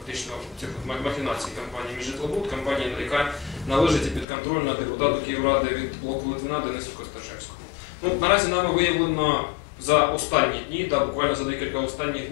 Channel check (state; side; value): drops out; right; at 4.2 s